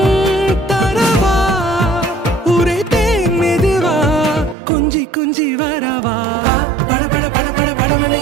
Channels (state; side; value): drops out; left; at 4.5 s